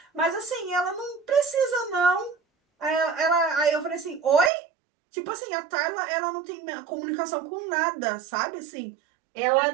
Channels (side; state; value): left; drops out; at 4.5 s